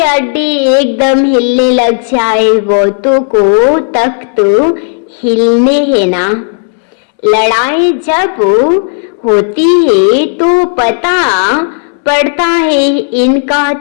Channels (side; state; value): right; silent; digital silence